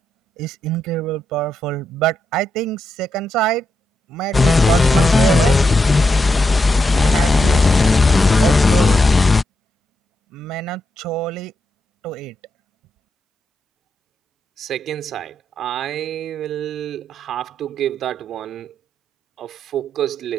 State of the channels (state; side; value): normal; both; correlation 0.83